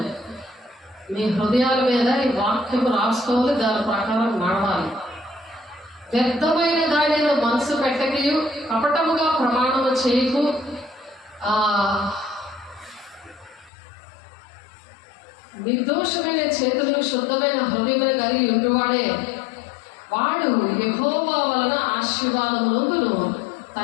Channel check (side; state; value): right; drops out; at 13.7 s